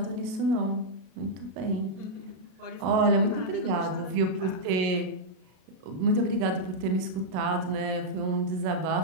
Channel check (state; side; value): late; left; 32 ms